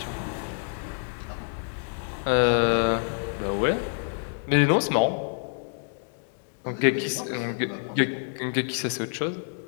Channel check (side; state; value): right; silent; digital silence